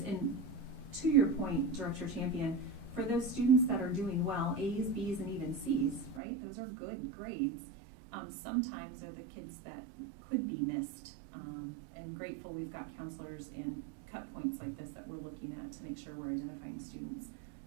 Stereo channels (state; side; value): drops out; left; at 6.2 s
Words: And to your point, Director Champion, for those students that are doing well, A's, B's, and even C's, right? Those are good grades. Sometimes are the kids that could be missed, and grateful we've got counselors and cut points like this that we're looking at to make sure we're identifying students.